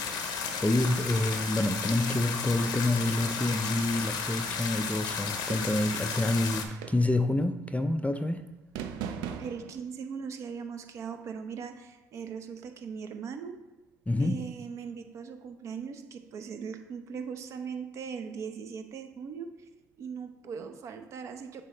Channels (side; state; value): both; normal; correlation 0.77